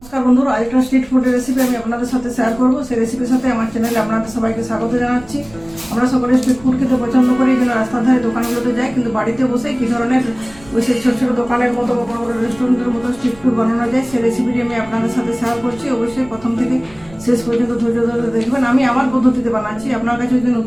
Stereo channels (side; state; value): right; noise; rumble, 22 dB below the sound